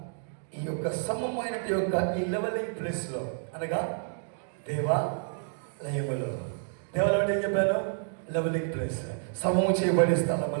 ఈ యొక్క సమమైన ఈ లెవెలింగ్ ప్లేస్ లో, అనగా దేవాలయములో, దేవాలయం అంటే ఏం చెప్పాను? లెవెలింగ్ ప్లేస్, సమము చేయబడే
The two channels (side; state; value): left; silent; digital silence